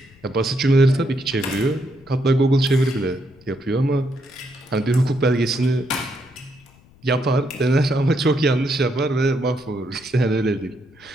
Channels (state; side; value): noise; left; rumble, 28 dB below the sound